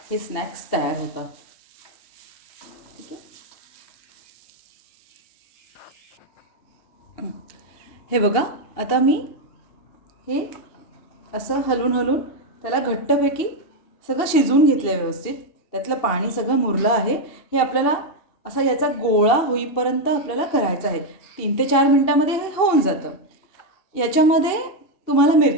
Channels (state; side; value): late; right; 2.8 ms